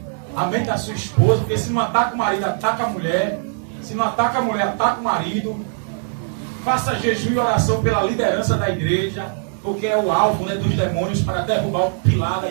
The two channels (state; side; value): silent; left; digital silence